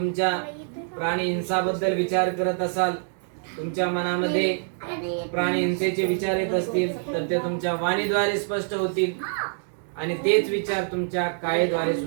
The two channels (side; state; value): left; silent; digital silence